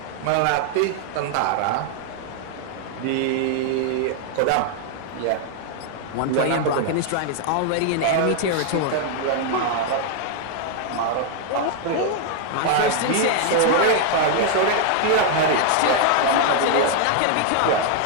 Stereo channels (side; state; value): both; different; correlation 0.00